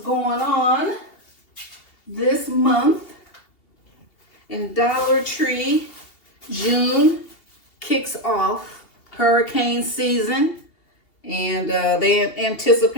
on this month. In Dollar Tree, June kicks off hurricane season, and they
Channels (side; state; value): right; late; 2.8 ms